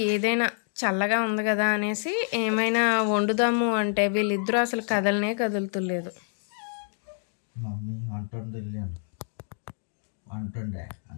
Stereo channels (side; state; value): right; silent; 60 dB below the other